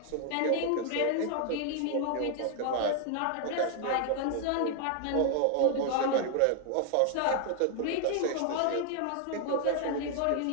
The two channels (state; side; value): different; both; correlation 0.00